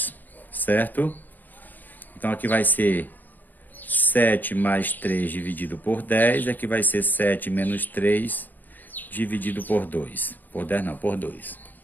certo? Então, aqui vai ser 7 mais 3 dividido por 10, aqui vai ser 7 menos 3 dividido por 2. Por 10 não, por 2,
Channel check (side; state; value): right; late; 0.086 ms